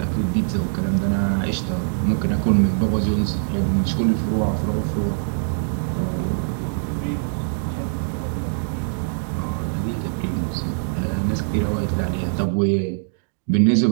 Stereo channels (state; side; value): silent; left; digital silence